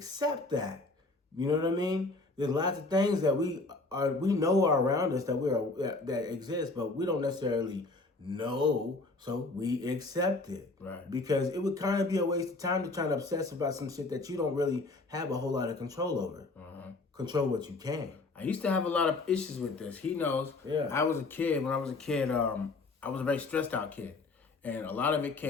that. You know what I mean? There's lots of things that we know are around us that that exist, but we don't necessarily No, so we accept it. Right. Because it would kind of be a waste of time to try to obsess about some shit that you don't really have a whole lot of control over. Control what you can. I used to have a lot of issues with this. He knows. Yeah. When I was a kid, I was a very stressed out kid. And a lot of it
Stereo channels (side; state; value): right; quieter; 3.4 dB